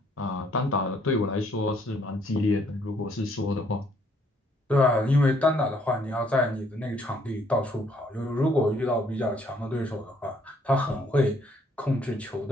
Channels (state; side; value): normal; both; correlation 0.66